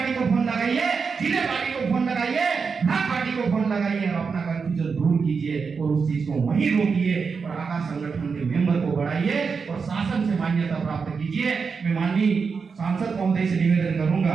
को फोन लगाइए, जिले पार्टी को फोन लगाइए, भाग पार्टी को फोन लगाइए और अपना कंफ्यूजन दूर कीजिए और उस चीज को वहीं रोकिए और आकाश संगठन के मेंबर को बढ़ाइए और शासन से मान्यता प्राप्त कीजिए। मैं माननीय सांसद महोदय से निवेदन करूंगा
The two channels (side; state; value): left; quieter; 5.4 dB